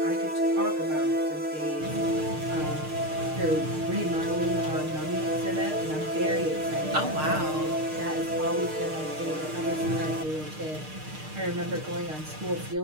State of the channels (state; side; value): late; left; 6.5 ms